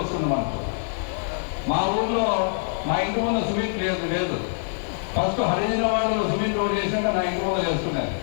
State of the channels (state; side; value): silent; right; digital silence